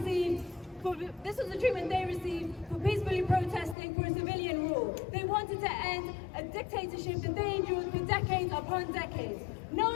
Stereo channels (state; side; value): drops out; right; at 3.8 s